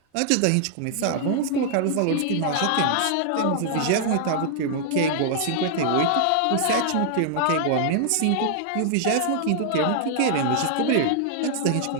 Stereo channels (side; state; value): both; different; correlation -0.01